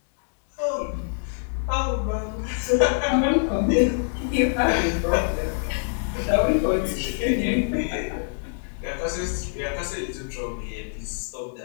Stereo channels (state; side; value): silent; right; digital silence